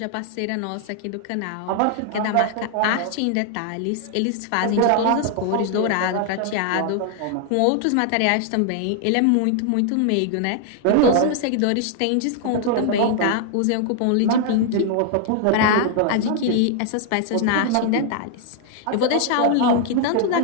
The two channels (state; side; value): different; both; correlation 0.00